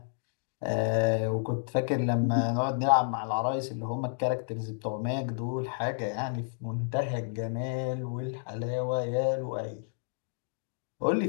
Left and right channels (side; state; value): right; silent; digital silence